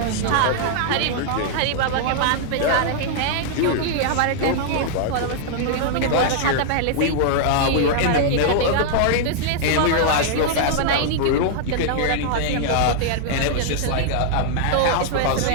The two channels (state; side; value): different; both; correlation -0.01